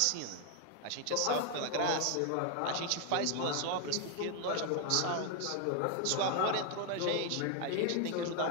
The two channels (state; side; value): different; both; correlation 0.01